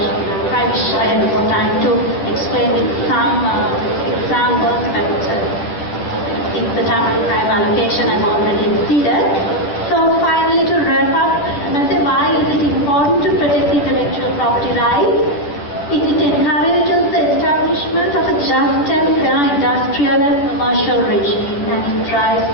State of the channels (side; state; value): right; late; 10 ms